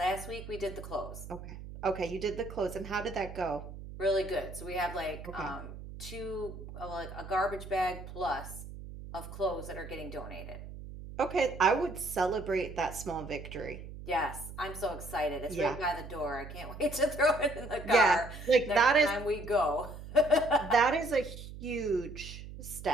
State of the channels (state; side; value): noise; right; hum, 12 dB below the sound